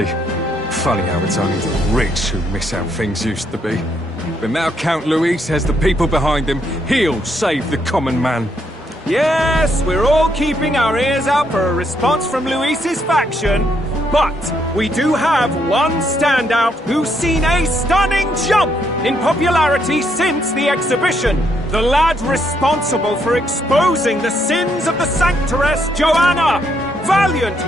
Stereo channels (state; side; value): normal; both; correlation 0.74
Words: Funny how it's only the rich who miss how things used to be. But now Count Luis has the people behind him. He'll save the common man. Yes, we're all keeping our ears out for a response from Luis's faction. But we do have one standout who's seen a stunning jump in popularity since the exhibition. The lad responsible for exposing the sins of the Sanctoress Joanna. Valiant